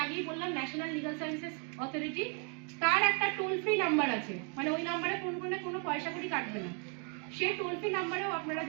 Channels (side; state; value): left; quieter; 38.6 dB